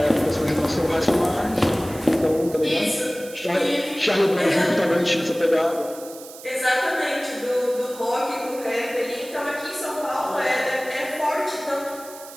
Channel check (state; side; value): noise; right; hiss, 17 dB below the sound